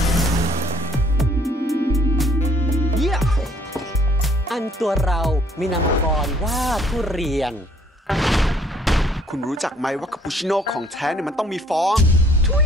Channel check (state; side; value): normal; both; correlation 0.61